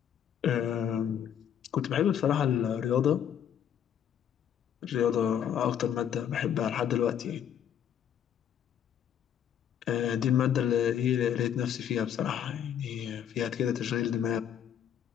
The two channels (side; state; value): right; quieter; 9.3 dB